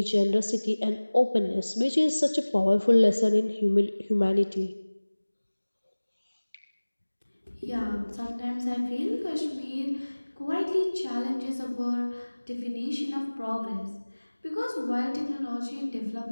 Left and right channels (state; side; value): inverted; both; correlation -1.00